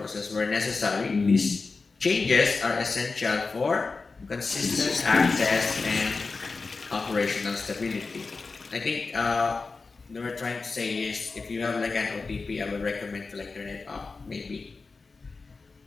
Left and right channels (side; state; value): right; quieter; 4.2 dB